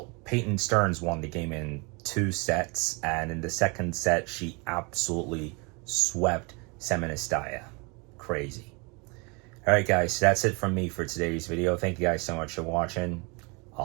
Peyton Stearns won the game in 2 sets, and in the second set, she absolutely swept Semenistaya. Crazy. All right, guys, that's it from me for today's video. Thank you guys so much for watching.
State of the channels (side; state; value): left; quieter; 30.1 dB